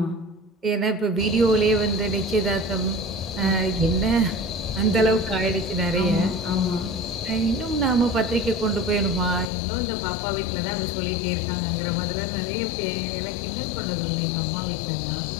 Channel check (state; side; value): drops out; right; at 9.5 s